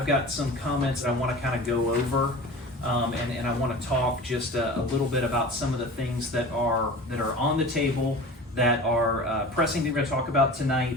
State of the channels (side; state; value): both; normal; correlation 0.36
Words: got some comments that I want to kind of go over, and I want to talk just a little bit about some of the things that are on the table that are pressing that we're going to talk about